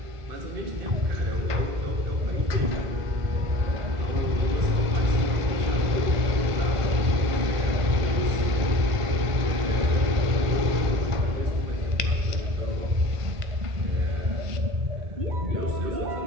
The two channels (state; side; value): late; left; 1.5 ms